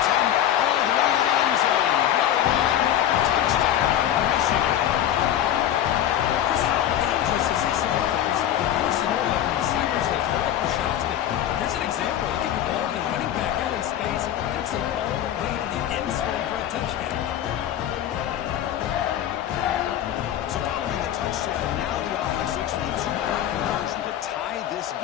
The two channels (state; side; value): quieter; right; 11.2 dB